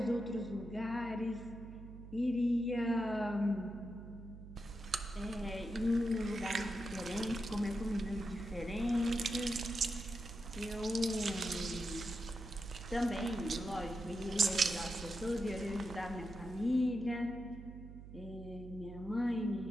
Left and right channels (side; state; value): right; noise; hum, 13 dB below the sound